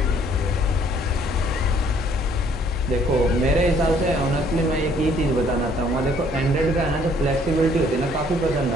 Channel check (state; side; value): normal; both; correlation 0.62